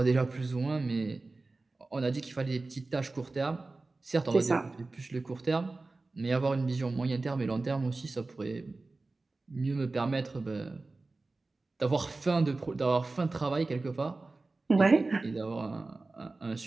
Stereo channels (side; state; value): left; quieter; 3.4 dB